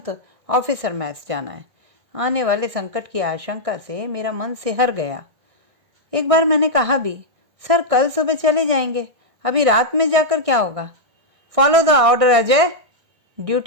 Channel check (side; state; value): left; late; 1.6 ms